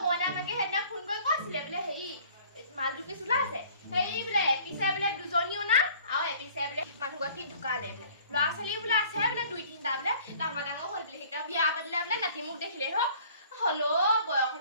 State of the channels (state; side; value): inverted; both; correlation -0.52